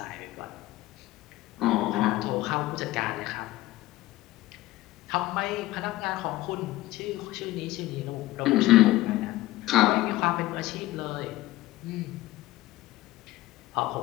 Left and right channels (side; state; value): right; quieter; 16.9 dB